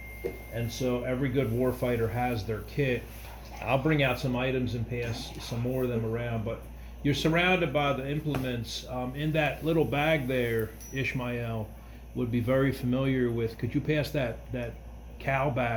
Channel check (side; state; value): both; identical; correlation 1.00